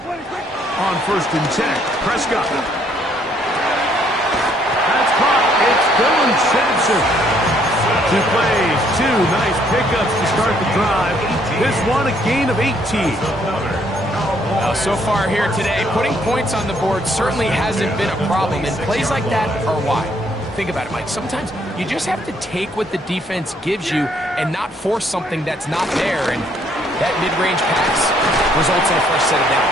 On first and 10, Prescott. That's caught. It's Dylan Sampson. 2 plays, 2 nice pickups to start the drive. This one a gain of 18. Well, so far here today, putting points on the board certainly hasn't been a problem, and plays like that are why. Think about it, Mike. Sometimes you just have to take what the defense gives you and not force something that's not there, and that mid-range pass results in a fresh set of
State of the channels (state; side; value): normal; both; correlation 0.67